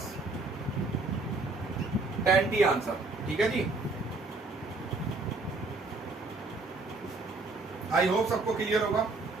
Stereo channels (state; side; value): quieter; left; 3.5 dB